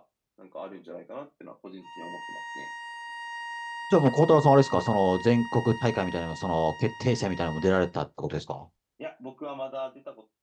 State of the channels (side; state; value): both; identical; correlation 1.00